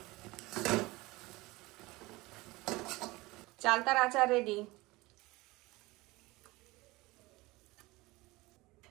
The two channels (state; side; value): quieter; left; 21.4 dB